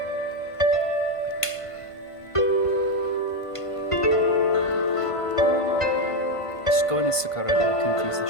Just go into Sakura to confuse the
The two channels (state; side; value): late; right; 1.5 ms